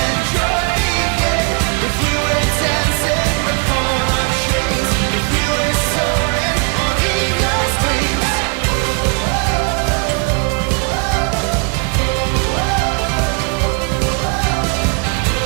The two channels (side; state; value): left; quieter; 34.7 dB